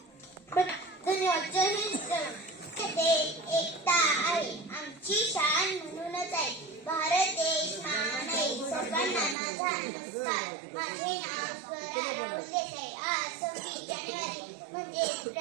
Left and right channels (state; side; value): drops out; left; at 9.3 s